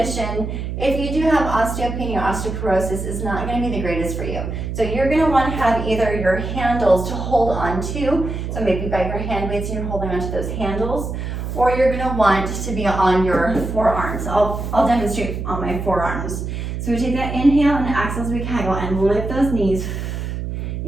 if you do have osteopenia or osteoporosis, is not going to be the greatest for you. So you're going to want to have either your handles to hold on to, so maybe you've got your hand weights and you're holding onto those handles, or you're going to want to be on your forearms. I'll demonstrate on my forearms. So we take that inhale and exhale as we kegel and lift those knees.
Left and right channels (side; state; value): right; noise; hum, 5 dB below the sound